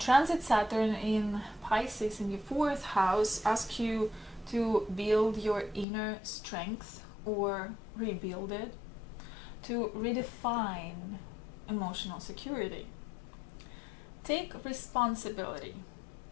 Saturn in Pisces in your 4th house asks you to build your inner strength or rebuild it, to redefine emotional security. Take responsibility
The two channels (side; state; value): right; drops out; at 5.9 s